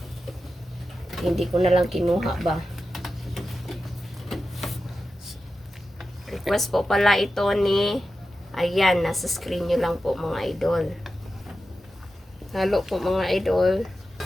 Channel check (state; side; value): normal; both; correlation 0.92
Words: Hindi ko na lang kinuha ba. Request po pala ito ni ayan, nasa screen nyo lang po mga idol. Halo po mga idol.